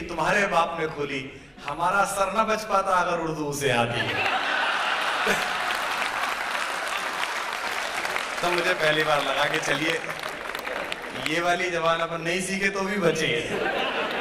तुम्हारे बाप ने खोली, हमारा सर न बच पाता अगर उर्दू उसे आती है। तो मुझे पहली बार लगा कि चलिए ये वाली जबान अपन नहीं सीखे तो भी बचेंगे,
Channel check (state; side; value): identical; both; correlation 1.00